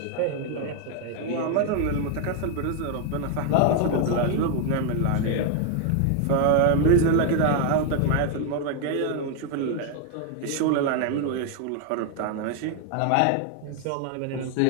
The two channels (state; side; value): different; both; correlation 0.01